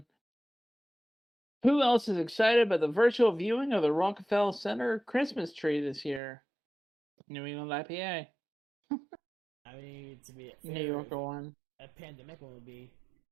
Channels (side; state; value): left; drops out; at 6.2 s